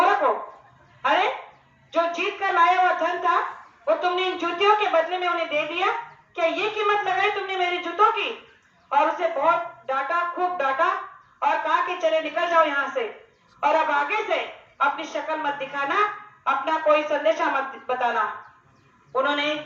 हो, अरे जो जीत कर लाया हुआ धन था वो तुमने इन जूतियों के बदले में उन्हें दे दिया, क्या ये कीमत लगाई तुमने मेरी जूतों की। और उसे बहुत डांटा, खूब डांटा और कहा कि चले निकल जाओ यहाँ से और अब आगे से अपनी शक्ल मत दिखाना, अपना कोई संदेशा मत बताना। उन्होंने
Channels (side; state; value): both; identical; correlation 1.00